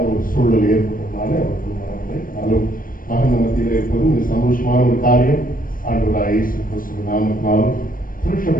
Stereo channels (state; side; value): late; right; 0.41 ms